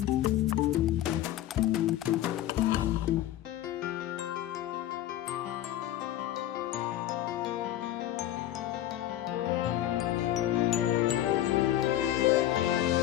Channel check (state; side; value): quieter; right; 13.1 dB